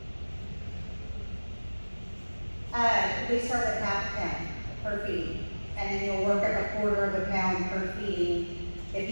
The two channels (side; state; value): both; inverted; correlation -1.00